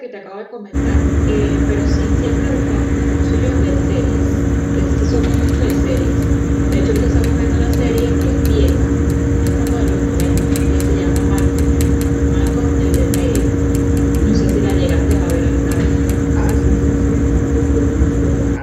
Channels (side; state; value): both; identical; correlation 1.00